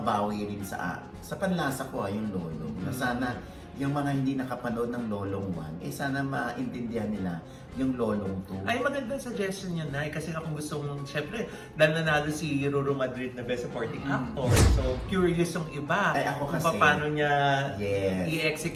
rin sa panlasa ko yung Lolong. Na sana yung mga hindi nakapanood ng Lolong 1, sana maintindihan nila yung Lolong 2. Ay, magandang suggestion yun, Nay. Kasi kung gusto mong, syempre, dahil nanalo si Ruru Madrid na Best Supporting Actor. So, curious yung iba. Ay, ako kung kasi- paano niya Yes.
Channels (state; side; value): identical; both; correlation 1.00